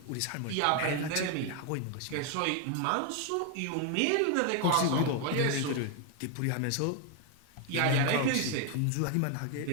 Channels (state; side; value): different; both; correlation 0.01